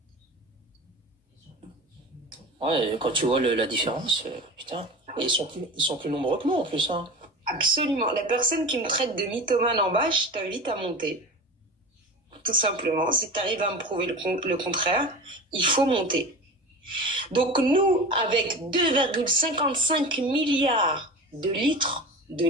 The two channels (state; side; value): normal; both; correlation 0.31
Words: Ouais, quand tu vois la différence, putain, et ils sont plus nombreux que nous en plus, hein. Absolument. La personne qui me traite de mythomane en bas, je t'invite à monter. Tout simplement. Si tu arrives à me prouver le contraire, il faut monter. Donc nous, avec 2,55 milliards de litres de